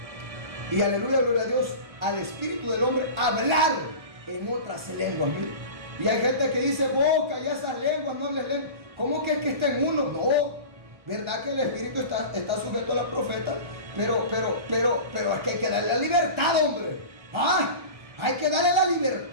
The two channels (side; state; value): left; late; 1.4 ms